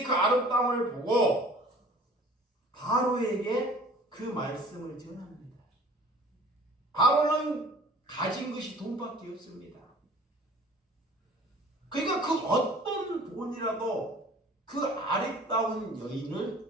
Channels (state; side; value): normal; both; correlation 0.47